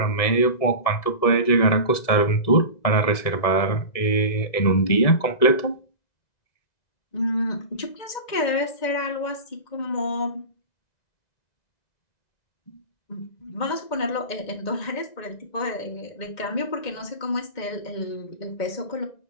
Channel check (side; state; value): right; late; 1.9 ms